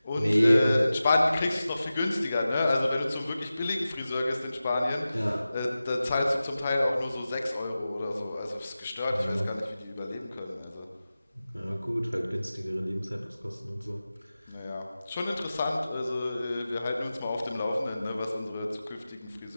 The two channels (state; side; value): inverted; both; correlation -0.95